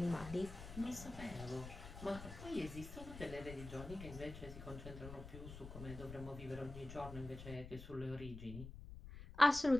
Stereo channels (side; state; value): left; noise; rumble, 11 dB below the sound